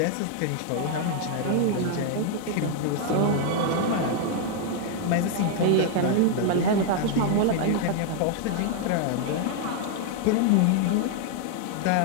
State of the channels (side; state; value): both; different; correlation 0.00